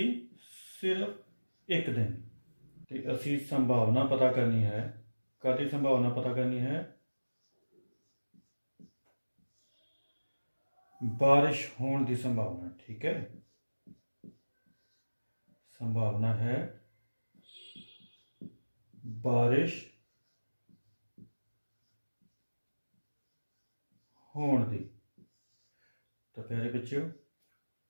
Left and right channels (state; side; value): inverted; both; correlation -1.00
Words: सिर्फ एक दिन। तो असी संभावना पता करनी है। कादी संभावना पता करनी है? बारिश होने की संभावना। ठीक है, संभावना है बारिश होने की। तो प्यारे बच्चों,